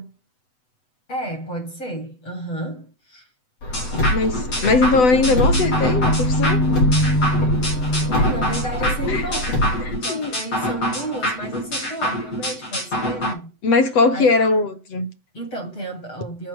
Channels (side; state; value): right; late; 7.9 ms